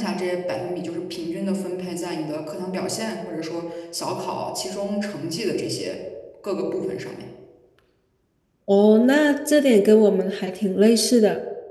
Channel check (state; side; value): identical; both; correlation 1.00